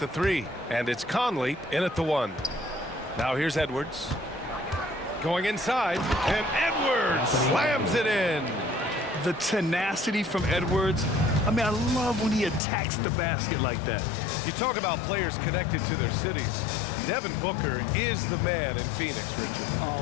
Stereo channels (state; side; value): drops out; right; at 12.6 s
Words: 3. And it's Conley in at the 1. Now here's Edwards. Going inside, and Edwards slams it in. The tenacity from Edwards. I mean, I love when he attacks the basket like that. You talk about players connected to their cities. Devin Booker is the man in Phoenix, Richard.